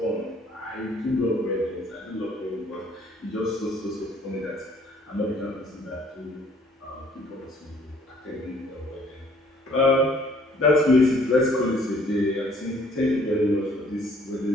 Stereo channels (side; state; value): both; normal; correlation 0.60